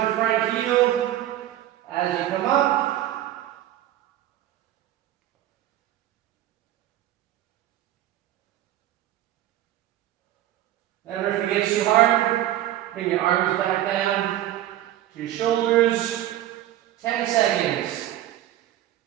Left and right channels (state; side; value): quieter; left; 13.3 dB